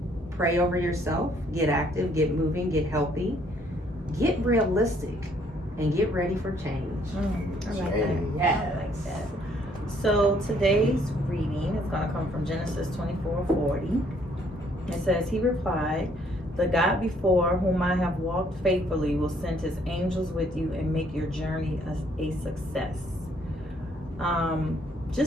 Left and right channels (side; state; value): both; normal; correlation 0.65